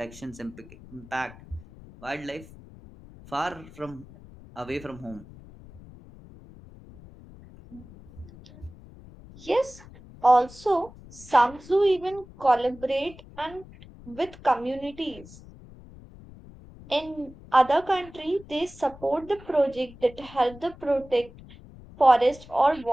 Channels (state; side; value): noise; left; rumble, 20 dB below the sound